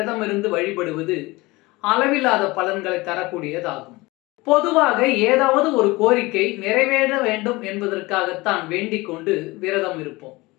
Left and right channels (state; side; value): quieter; right; 22.1 dB